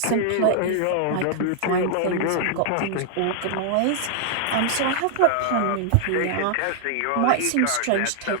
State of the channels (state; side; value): different; both; correlation 0.00